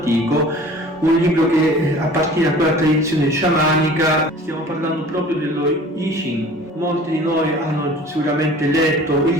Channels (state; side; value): normal; both; correlation 0.46